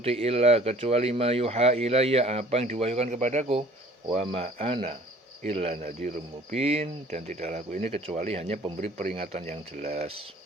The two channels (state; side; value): normal; both; correlation 0.51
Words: illa, kecuali ma yuha ilayya, apa yang diwahyukan kepadaku, wa ma ana illa nadhirum mubin, dan tidaklah aku ini kecuali hanya pemberi peringatan yang jelas.